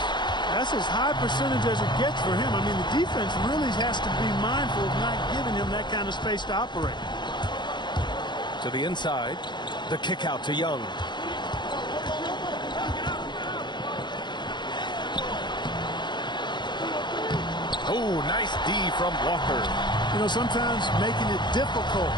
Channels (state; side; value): late; right; 0.22 ms